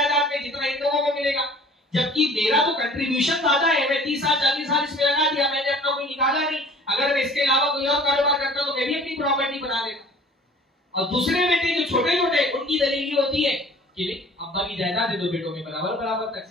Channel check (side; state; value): both; normal; correlation 0.49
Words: में, जितना इन लोगों को मिलेगा? जबकि मेरा तो कंट्रीब्यूशन ज्यादा है, मैं 30 साल 40 साल इसमें लगा दिया, मैंने अपना कोई निकाला नहीं। अगर मैं इसके अलावा कोई और कारोबार करता तो मैं भी अपनी प्रॉपर्टी बना लेता। और दूसरे बेटे जो छोटे छोटे, उनकी दलील होती है कि अब्बा की जायदाद है, दो बेटों में बराबर बराबर